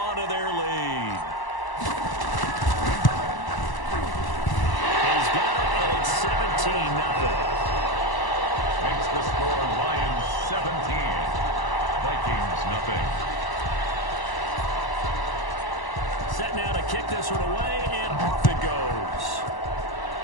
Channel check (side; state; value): right; late; 1.0 ms